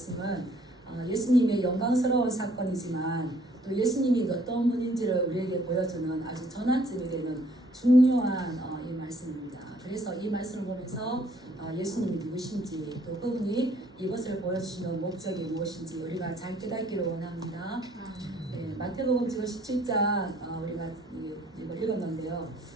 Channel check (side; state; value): both; normal; correlation 0.62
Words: 예수님의 영광스러운 사건이지만 또 예수님이 어떤 분인지를 우리에게 보여주는 아주 전환점이 되는 중요한 이 말씀입니다. 그래서 이 말씀을 보면서 예수님이 누구신지 또 그분이 이것을 보여주시는 목적이 무엇인지 우리가 잘 깨닫기를 원합니다. 네, 마태복음 지금 17장 우리가 이걸 읽었는데요.